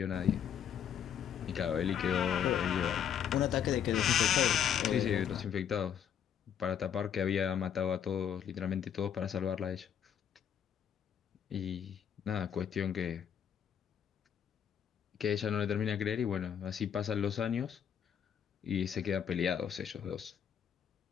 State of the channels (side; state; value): right; quieter; 8.7 dB